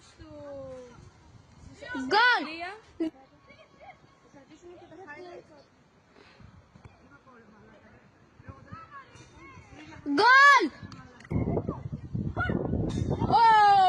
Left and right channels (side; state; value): both; identical; correlation 1.00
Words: του... Γκολ! Θα κρατήσουμε και τα highlights. Γκολ!